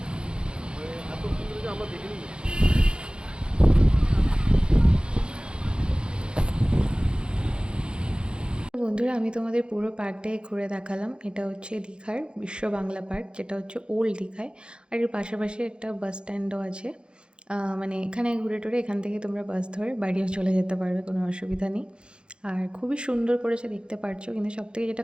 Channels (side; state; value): left; late; 0.053 ms